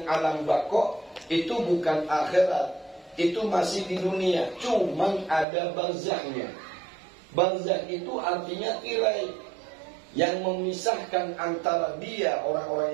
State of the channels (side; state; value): left; drops out; at 5.5 s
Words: alam baqo, itu bukan akhirat, itu masih di dunia, cuman ada barzakhnya. Barzakh itu artinya tirai yang memisahkan antara dia,